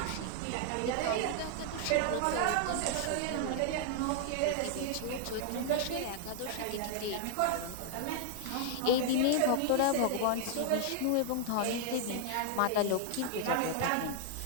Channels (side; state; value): both; different; correlation 0.00